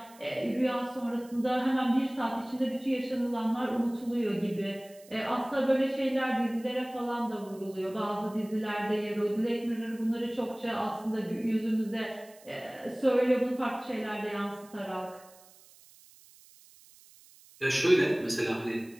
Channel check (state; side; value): noise; right; hiss, 24 dB below the sound